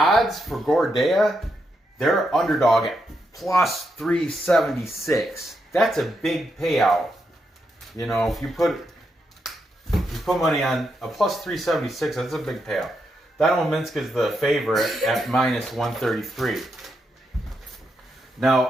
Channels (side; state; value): both; normal; correlation 0.82